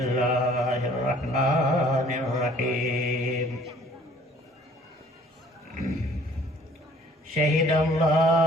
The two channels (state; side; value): normal; both; correlation 0.55